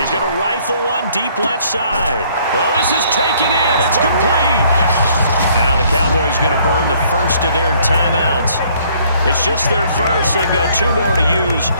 going to rifle one deep left side. Oh, this is taken in. It's complete. Now the Cowboys going to burn the first of their timeouts. It's just their first. They've got 2 more to use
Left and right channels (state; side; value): inverted; both; correlation -0.62